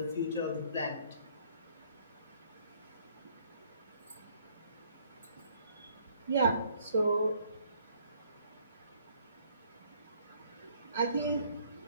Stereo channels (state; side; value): inverted; both; correlation -0.63